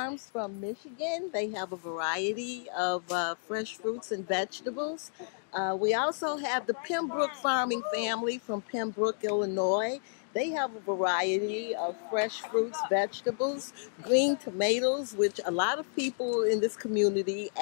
from Michigan. They have a variety of fresh fruits and vegetables. We also have the Pembroke farming family from Pembroke, Illinois. They have a variety of fresh fruits, vegetables, green tomatoes, which a lot of people in this community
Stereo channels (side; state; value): right; silent; digital silence